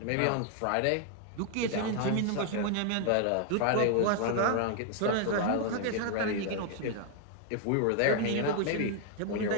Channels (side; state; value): both; different; correlation 0.00